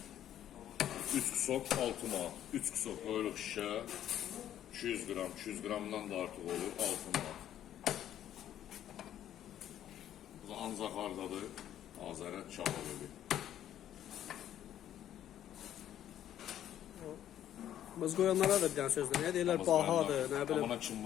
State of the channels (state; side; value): quieter; right; 11.2 dB